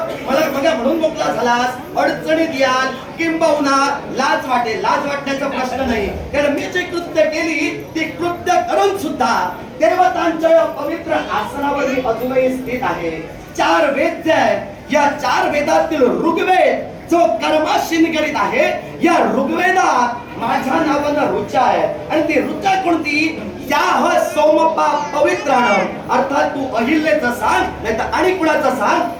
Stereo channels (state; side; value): identical; both; correlation 1.00